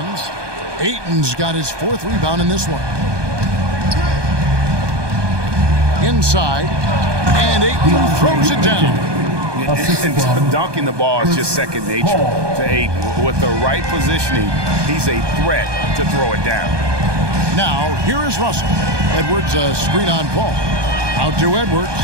Ayton's got his 4th rebound in this one. Inside, and Ayton throws it down. And dunking the ball is just second nature to Ayton. With the right positioning, he's a threat to throw it down. Now, here is Russell. Edwards, a screen on Paul. Out to Edwards.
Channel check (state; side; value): late; left; 1.2 ms